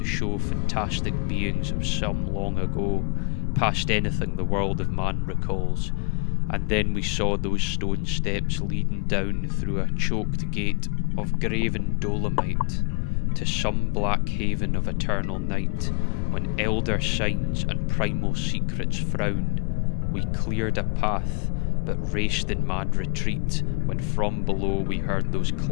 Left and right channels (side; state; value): right; quieter; 34.8 dB